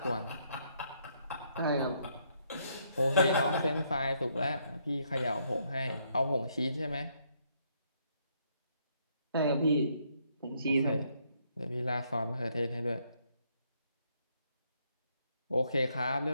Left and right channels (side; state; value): both; inverted; correlation -0.72